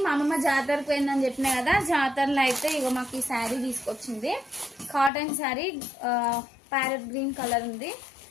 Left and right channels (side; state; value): right; drops out; at 5.1 s